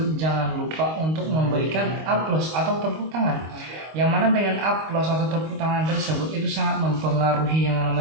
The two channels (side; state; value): left; late; 25 ms